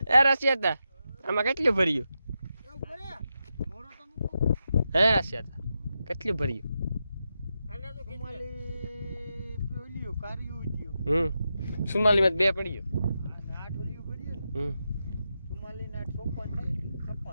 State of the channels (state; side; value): inverted; both; correlation -0.87